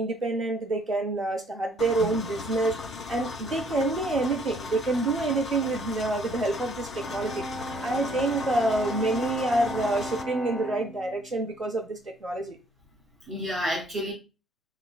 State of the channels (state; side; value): normal; both; correlation 0.63